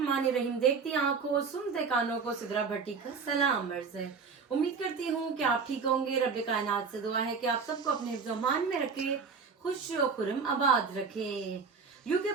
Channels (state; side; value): quieter; left; 5.3 dB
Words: देखती आंखों सुनते कानों को सिद्रा भट्टी का सलाम अर्ज है। उम्मीद करती हूँ कि आप ठीक होंगे। रब्बे कायनात से दुआ है कि आप सबको अपने हिफ्ज़-ओ-मान में रखे, खुश व खुर्रम आबाद रखे। यूके